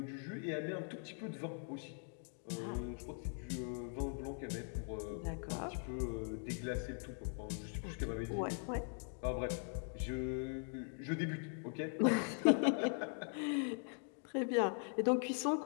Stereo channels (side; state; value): right; silent; 50 dB below the other